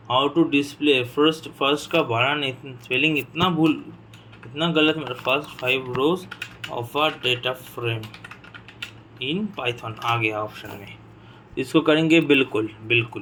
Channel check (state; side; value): identical; both; correlation 1.00